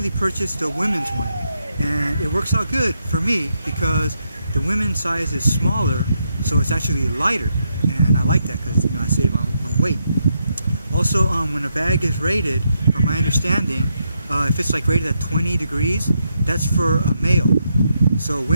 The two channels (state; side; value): inverted; both; correlation -0.80